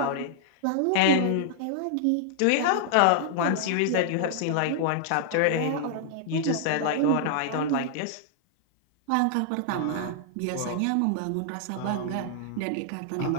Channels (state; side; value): different; both; correlation -0.01